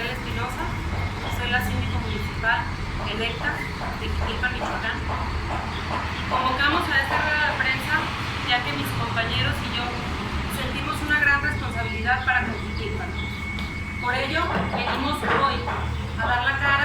Espinosa, soy la síndico municipal electa de Jiquilpan, Michoacán. Convocamos a esta rueda de prensa ya que mis compañeros y yo sentimos una gran responsabilidad para con Jiquilpan. Por ello, venimos hoy a dar la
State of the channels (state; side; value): identical; both; correlation 1.00